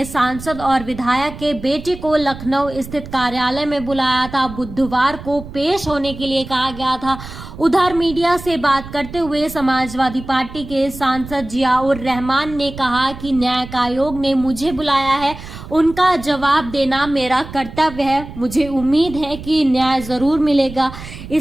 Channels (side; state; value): right; noise; rumble, 13 dB below the sound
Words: सांसद और विधायक के बेटे को लखनऊ स्थित कार्यालय में बुलाया था। बुधवार को पेश होने के लिए कहा गया था। उधर मीडिया से बात करते हुए समाजवादी पार्टी के सांसद जियाउर रहमान ने कहा कि न्यायिक आयोग ने मुझे बुलाया है, उनका जवाब देना मेरा कर्तव्य है। मुझे उम्मीद है कि न्याय जरूर मिलेगा।